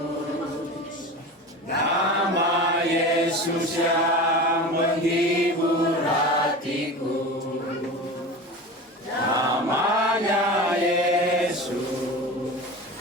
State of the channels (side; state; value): both; normal; correlation 0.31